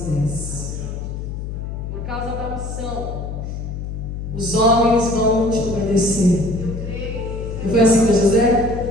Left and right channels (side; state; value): left; noise; hum, 6 dB below the sound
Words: Por causa da unção, os homens vão te obedecer. Não foi assim com José?